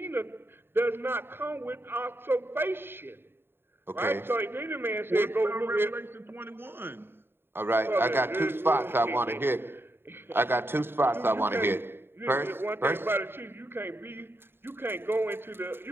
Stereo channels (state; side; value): late; left; 0.11 ms